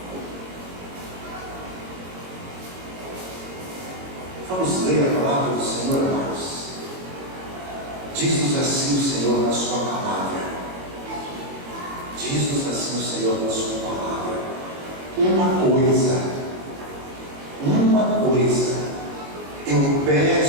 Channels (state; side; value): late; left; 22 ms